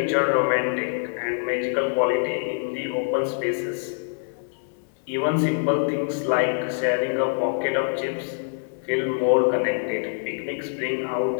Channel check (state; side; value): silent; right; digital silence